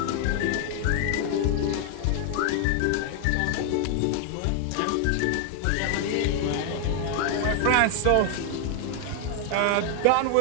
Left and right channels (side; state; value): both; different; correlation 0.00